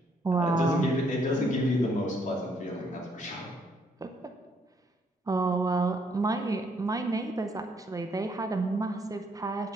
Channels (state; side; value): normal; both; correlation 0.70